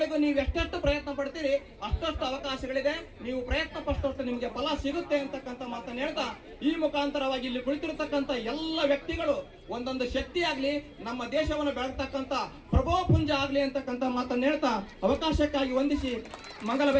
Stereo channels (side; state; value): both; identical; correlation 1.00